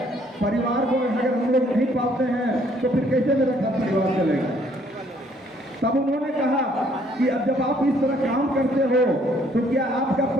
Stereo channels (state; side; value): normal; both; correlation 0.64